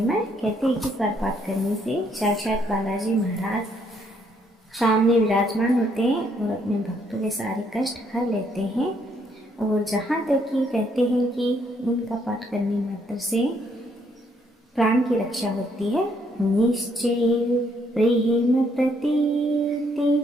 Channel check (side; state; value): both; normal; correlation 0.70